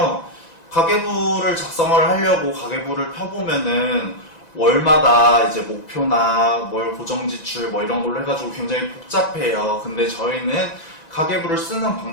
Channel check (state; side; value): late; right; 1.9 ms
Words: 가계부를 작성을 하려고 가계부를 펴보면은 월마다 이제 목표나 월 고정지출 뭐 이런 걸로 해가지고 굉장히 복잡해요. 근데 저희는 가계부를 쓰는